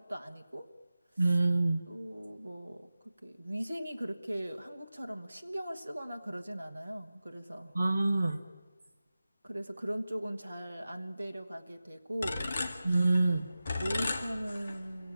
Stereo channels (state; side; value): inverted; both; correlation -0.95